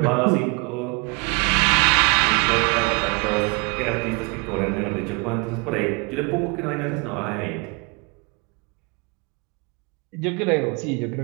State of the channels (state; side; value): quieter; left; 30.1 dB